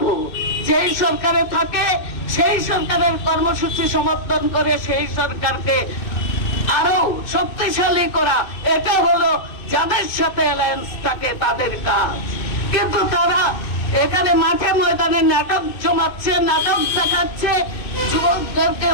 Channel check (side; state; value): right; late; 2.6 ms